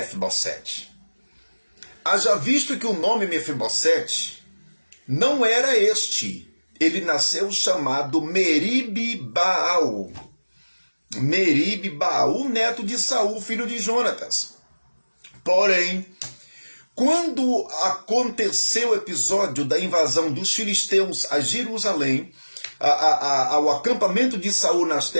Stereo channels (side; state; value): both; inverted; correlation -1.00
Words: Haja visto que o nome Mefibosete não era este. Ele nasceu chamado Meribe-Baal. Meribe-Baal, neto de Saul, filho de Jonatas. Porém, quando aconteceu o episódio da invasão dos filisteus a Jerusalém, ao acampamento de Saul nas